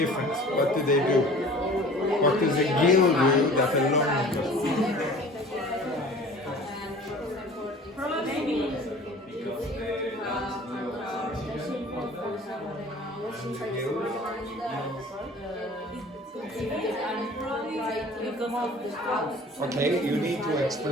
What do they do? What does a gill do that a lung does? Okay, you need to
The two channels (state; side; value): normal; both; correlation 0.45